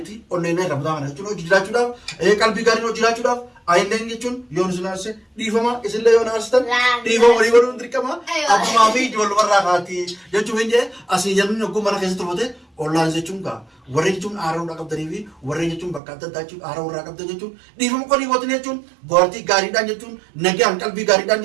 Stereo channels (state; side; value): drops out; left; at 16.0 s